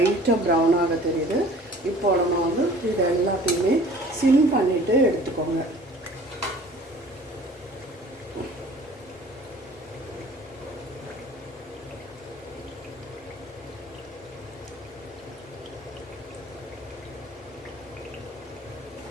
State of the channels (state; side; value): normal; both; correlation 0.48